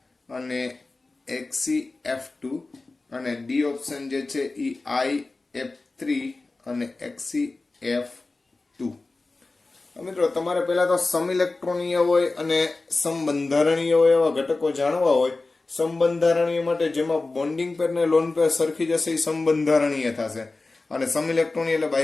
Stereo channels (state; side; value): quieter; right; 3.4 dB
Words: અને XeF2 અને ડી ઓપ્શન જે છે એ IF3 અને XeF2. મિત્રો તમારે પહેલા તો સમઇલેક્ટ્રોનીય હોય અને સમબંધારણીય હોય એવા ઘટકો જાણવા હોય. સમબંધારણીય માટે જેમાં બોન્ડિંગ પેર ને લોન પેર સરખી જશે એ સમબંધારણીય થશે, અને સમઇલેક્ટ્રોનીય એટલે